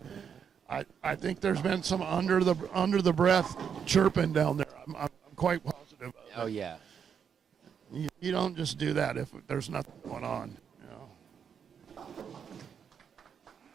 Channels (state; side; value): quieter; left; 7.4 dB